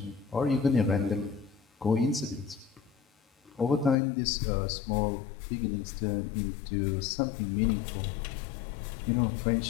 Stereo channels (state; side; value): drops out; right; at 4.0 s